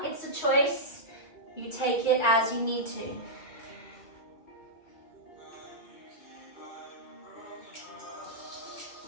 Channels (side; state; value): right; late; 2.3 ms